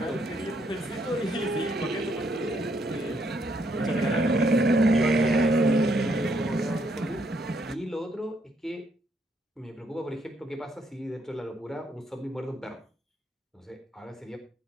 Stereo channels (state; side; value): normal; both; correlation 0.72